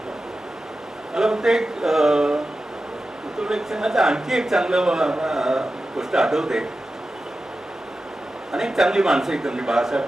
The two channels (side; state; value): both; normal; correlation 0.93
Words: मला वाटतं एक वृत्तपत्र संघाचं आणखी एक चांगलं गोष्ट आठवते. अनेक चांगली माणसं इथं म्हणजे